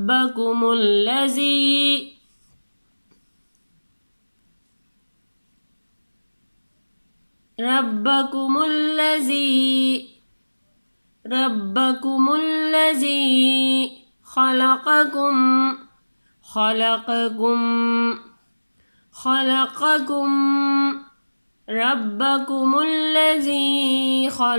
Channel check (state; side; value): inverted; both; correlation -1.00